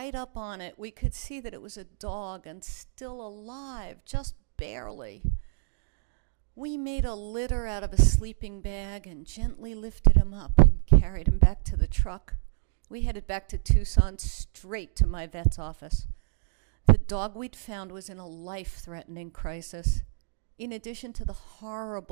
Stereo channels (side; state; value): left; silent; digital silence